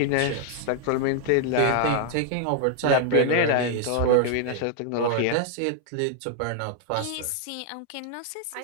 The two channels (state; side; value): different; both; correlation 0.00